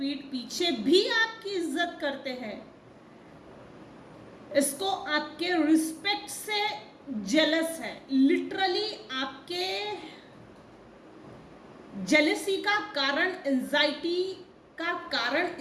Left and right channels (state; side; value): identical; both; correlation 1.00